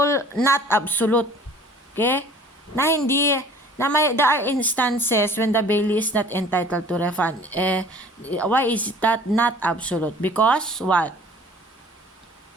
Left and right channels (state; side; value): normal; both; correlation 0.49